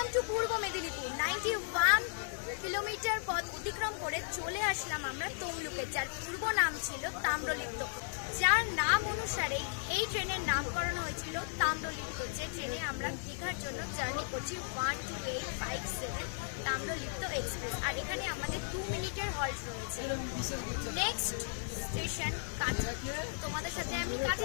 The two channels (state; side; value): silent; right; digital silence